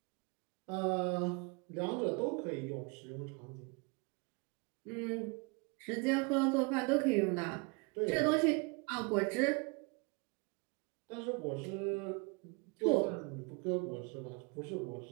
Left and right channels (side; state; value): left; quieter; 30.9 dB